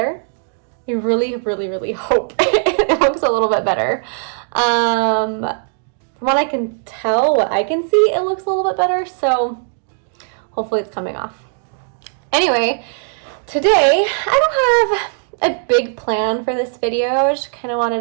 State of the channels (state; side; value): silent; left; digital silence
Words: I really hope it looks a little bit better. From what I can tell, what I can see, it looks a little bit better, so hopefully it's coming off. Anyway, today I don't have a big plan for this video. I just kind of wanted